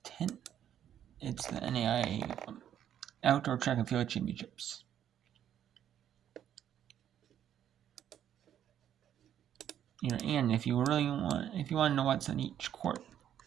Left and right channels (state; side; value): quieter; left; 10.2 dB